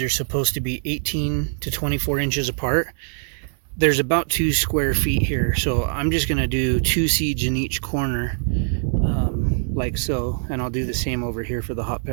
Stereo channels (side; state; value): left; silent; digital silence